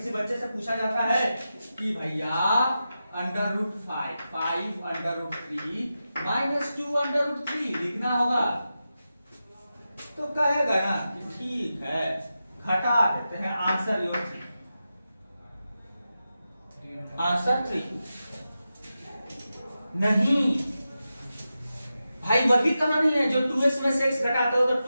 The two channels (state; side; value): inverted; both; correlation -0.91